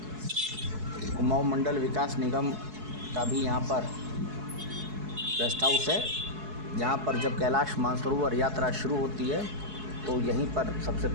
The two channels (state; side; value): late; left; 4.7 ms